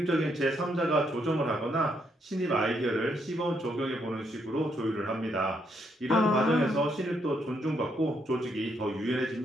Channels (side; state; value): both; normal; correlation 0.75